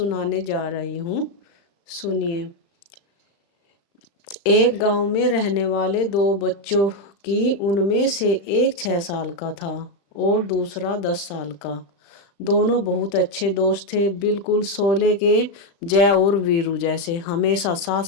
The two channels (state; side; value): late; right; 35 ms